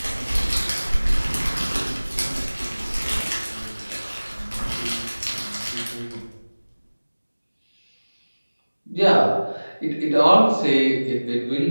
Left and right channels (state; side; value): inverted; both; correlation -1.00